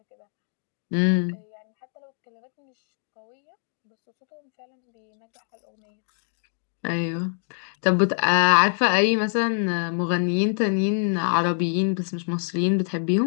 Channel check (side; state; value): right; silent; digital silence